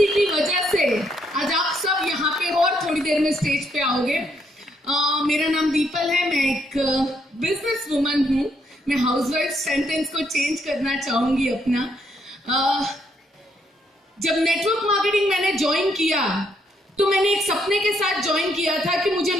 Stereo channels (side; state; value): both; normal; correlation 0.73